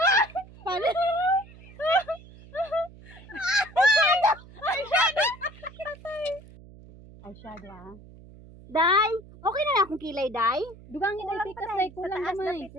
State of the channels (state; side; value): noise; right; hum, 20 dB below the sound